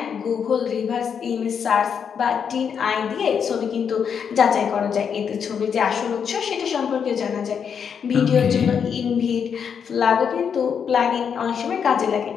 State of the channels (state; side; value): quieter; right; 7.2 dB